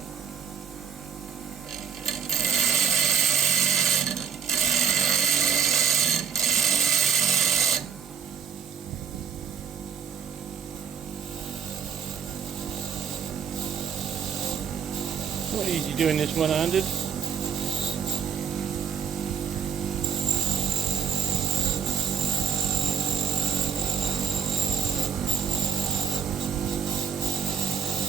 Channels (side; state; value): left; quieter; 7.3 dB